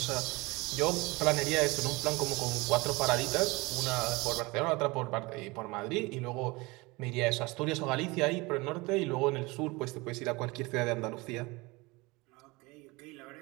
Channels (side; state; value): left; quieter; 24.0 dB